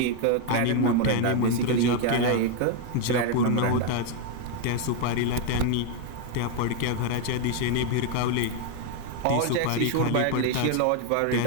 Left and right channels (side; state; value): both; different; correlation 0.01